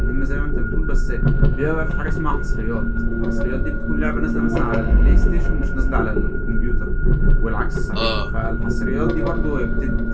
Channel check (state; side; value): identical; both; correlation 1.00